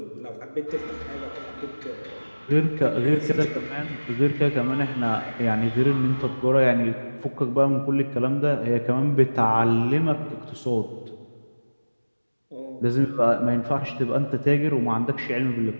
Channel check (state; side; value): inverted; both; correlation -1.00